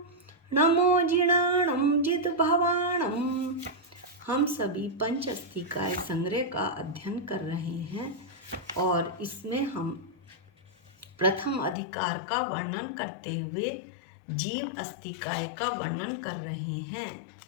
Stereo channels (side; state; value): right; drops out; at 11.8 s